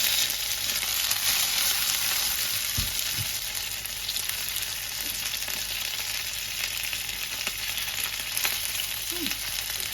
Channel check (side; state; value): both; normal; correlation 0.91